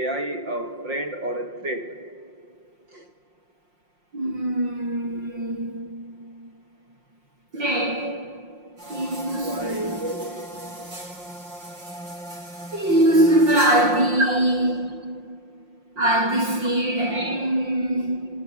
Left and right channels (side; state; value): left; late; 5.6 ms